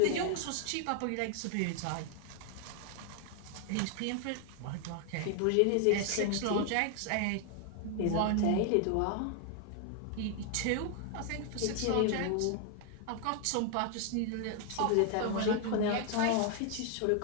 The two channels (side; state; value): both; different; correlation 0.00